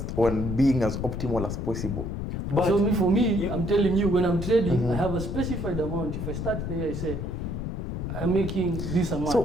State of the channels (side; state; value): left; noise; rumble, 4 dB below the sound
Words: on being as optimal as possible. But so for me, I'm telling you, when I'm trading, I have a specified amount. If I start there, I say, I'm making this amount. So